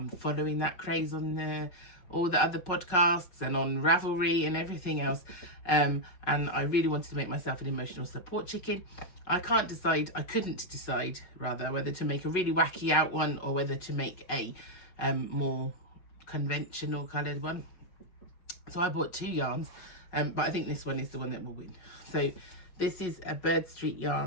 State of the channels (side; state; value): right; late; 5.4 ms